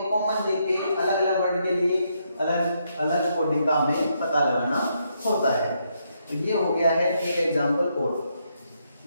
कॉमन देख के अलग अलग वर्ड के लिए अलग अलग कोडिंग का हमें पता लगाना होता है। तो ये हो गया है एक एग्जाम्पल कोड।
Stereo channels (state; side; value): inverted; both; correlation -0.77